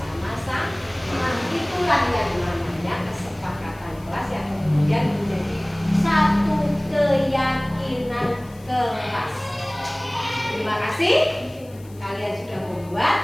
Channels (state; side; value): noise; left; hiss, 26 dB below the sound